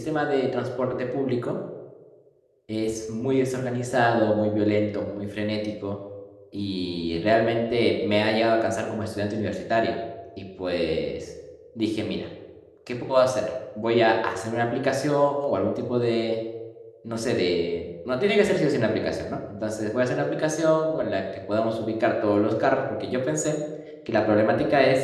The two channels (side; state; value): both; identical; correlation 1.00